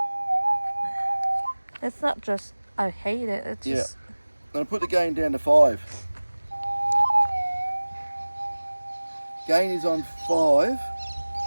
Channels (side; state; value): both; inverted; correlation -1.00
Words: It's not just I hate it. It's just. I'm gonna put the gain down to 5. Gain is on 5.